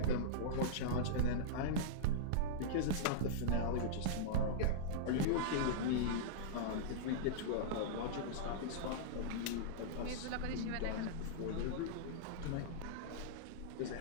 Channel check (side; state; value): both; different; correlation -0.03